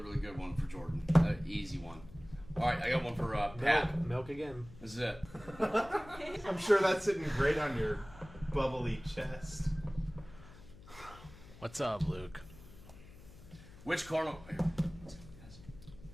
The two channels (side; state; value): left; noise; hum, 19 dB below the sound